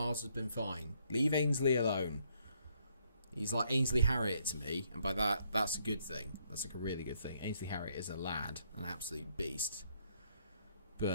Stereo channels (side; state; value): both; inverted; correlation -0.71